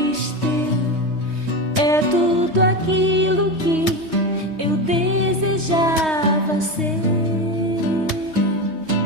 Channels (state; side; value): late; left; 3.2 ms